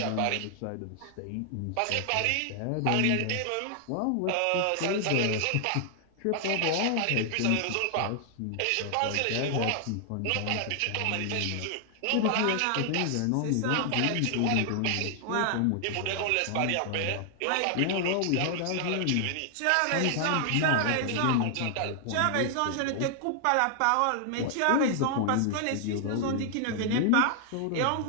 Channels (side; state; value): both; different; correlation 0.00